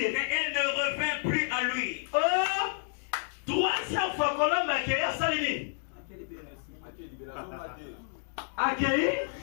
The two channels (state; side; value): silent; right; 58 dB below the other